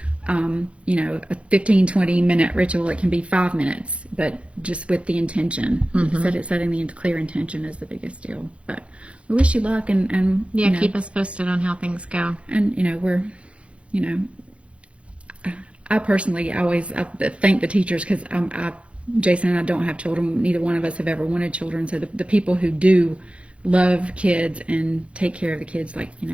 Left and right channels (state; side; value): late; left; 0.061 ms